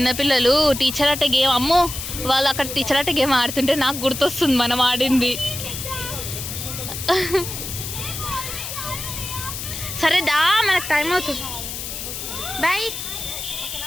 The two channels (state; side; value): noise; left; hiss, 7 dB below the sound